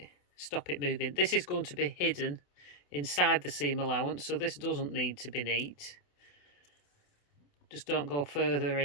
moving. This is going to be hidden inside the seam allowance, so this doesn't need to be neat. Just don't go further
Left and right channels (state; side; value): late; right; 28 ms